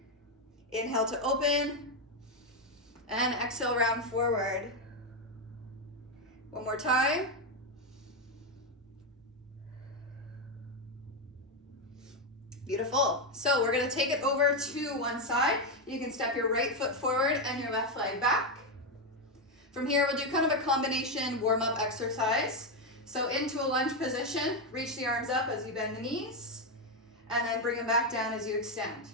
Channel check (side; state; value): both; normal; correlation 0.06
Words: Inhale to open. And exhale, round forward. One more time. Beautiful. So we're going to take it over to one side. You can step your right foot forward and your left leg back. From here, we'll do kind of a combination warm-up exercise. So into a lunge position, reach the arms up as you bend the knees, and then bring them back down as you extend.